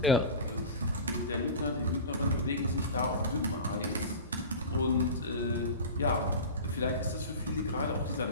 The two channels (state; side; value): inverted; both; correlation -0.32